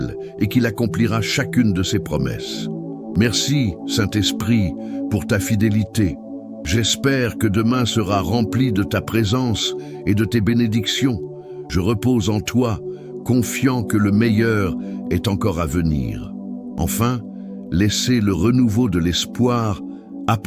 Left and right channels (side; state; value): both; identical; correlation 1.00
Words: et qu'il accomplira chacune de ses promesses. Merci, Saint-Esprit, pour ta fidélité. J'espère que demain sera rempli de ta présence et de tes bénédictions. Je repose en toi, confiant que le meilleur est encore à venir. Enfin, laissez le renouveau de l'espoir